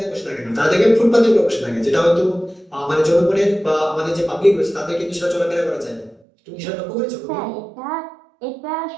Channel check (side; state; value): left; drops out; at 6.2 s